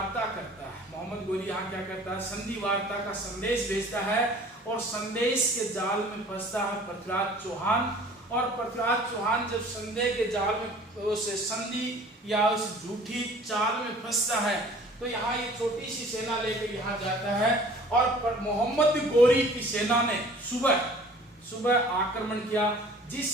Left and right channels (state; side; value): normal; both; correlation 0.49